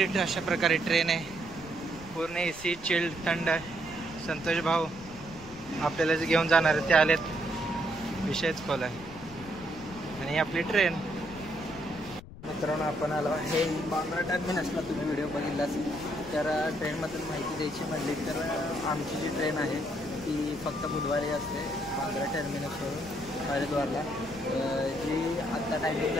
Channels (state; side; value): noise; left; rumble, 17 dB below the sound